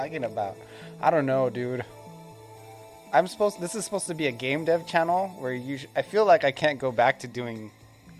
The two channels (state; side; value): identical; both; correlation 1.00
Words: about? I don't know, dude. This is supposed to be a game dev channel where I feel like I can't go back to doing